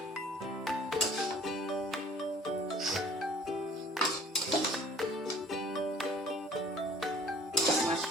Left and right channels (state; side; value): normal; both; correlation 0.52